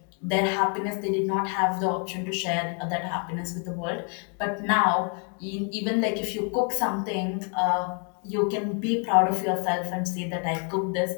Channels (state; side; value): quieter; right; 40.0 dB